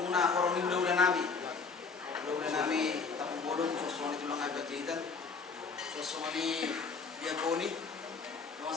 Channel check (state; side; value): quieter; right; 4.9 dB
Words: korong udah nami. Udah nami tapu bodong sosoni tulang ibadah jahitan. Sosoni diakoni